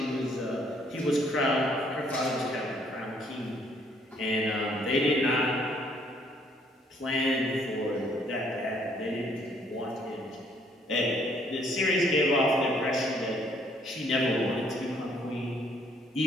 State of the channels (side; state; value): both; normal; correlation 0.65